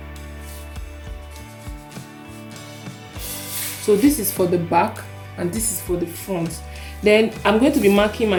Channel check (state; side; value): identical; both; correlation 1.00